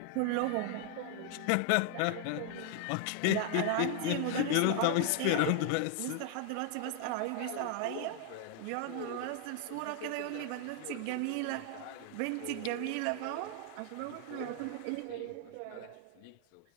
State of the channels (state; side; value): different; both; correlation 0.00